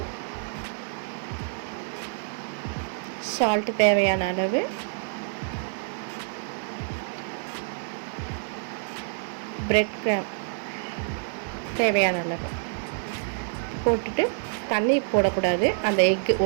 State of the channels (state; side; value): silent; left; 60 dB below the other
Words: சால்ட் தேவையான அளவு, பிரெட் கிராம் தேவையான அளவு போட்டுட்டு தண்ணி போடக்கூடாது. அந்த எக்கு